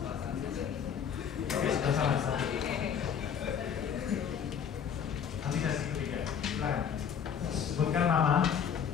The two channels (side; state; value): right; quieter; 7.7 dB